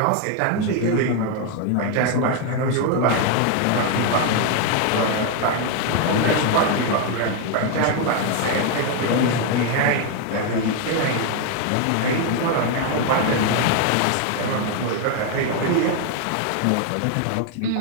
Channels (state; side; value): different; both; correlation 0.01